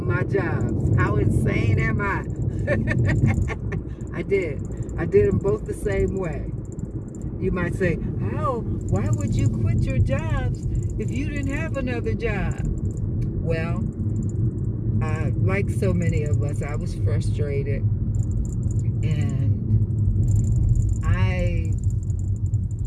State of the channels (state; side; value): identical; both; correlation 1.00